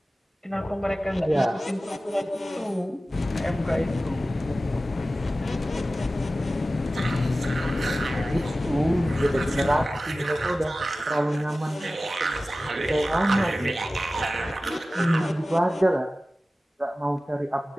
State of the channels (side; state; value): both; normal; correlation 0.95